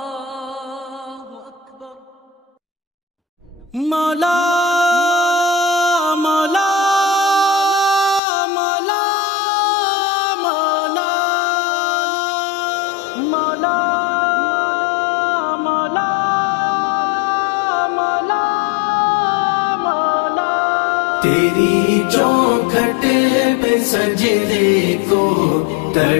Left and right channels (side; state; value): right; drops out; at 8.2 s